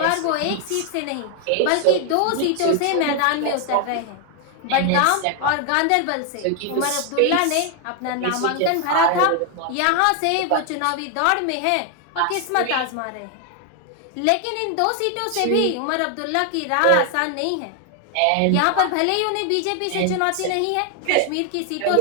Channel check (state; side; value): different; both; correlation 0.00